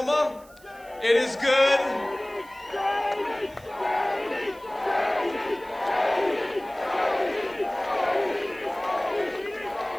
It is good.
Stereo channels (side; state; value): right; noise; hiss, 26 dB below the sound